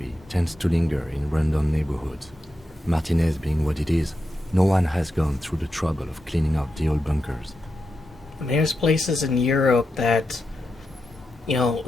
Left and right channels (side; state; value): both; normal; correlation 0.87